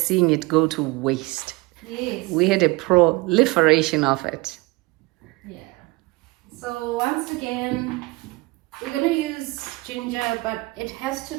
seeing it go to waste. Yes. We had a proliferation of it. Yeah. So once again, we're going to use ginger, but it has to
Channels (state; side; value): quieter; left; 23.6 dB